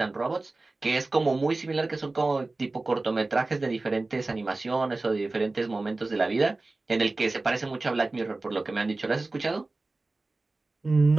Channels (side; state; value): left; quieter; 3.2 dB